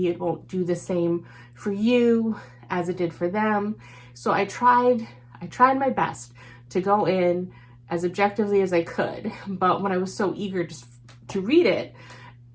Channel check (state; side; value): identical; both; correlation 1.00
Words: it won't do the same for you as it did for them. So I tried my best to go in as objectively as I could, but when I was so eager to read it,